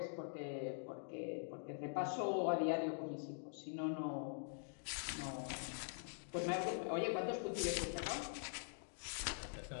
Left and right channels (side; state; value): right; silent; digital silence